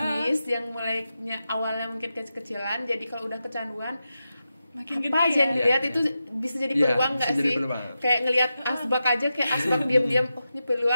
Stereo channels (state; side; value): inverted; both; correlation -0.90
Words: yang mulainya awalnya mungkin kecil-kecilan, jadi kalau udah kecanduan makin apa gede aja yang ya. dilihat itu bisa jadi peluang nggak sih? Kayak ngelihat asbak aja, kayak asbak diam-diam, oh ini